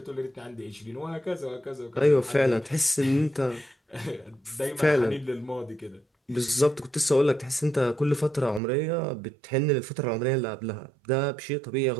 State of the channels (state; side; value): drops out; left; at 8.6 s